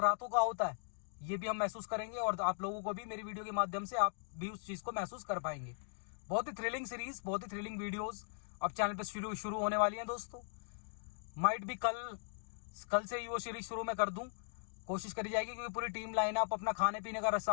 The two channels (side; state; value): right; silent; digital silence